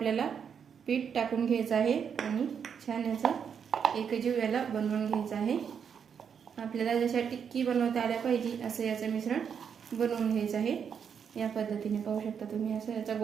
पीठ टाकून घ्यायचं आहे आणि छान याचा एकजीव याला बनवून घ्यायचं आहे। आपल्याला जशा टिक्की बनवता आल्या पाहिजे असं याचं मिश्रण बनवून घ्यायचं आहे। या पद्धतीने पाहू शकता तुम्ही, असं याचा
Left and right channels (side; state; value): left; quieter; 7.2 dB